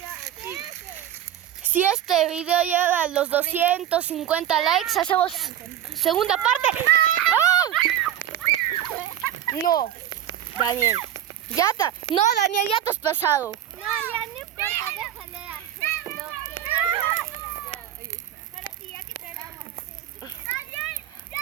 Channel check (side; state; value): left; quieter; 11.3 dB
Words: Si este video llega a los 250 likes, hacemos segunda parte. ¡Ah! No, Daniel. No, Daniel, ya te has pasado. No, ya no importa, déjale hacer lo que... Pero sí, ya que esperamos. ¡Daniel!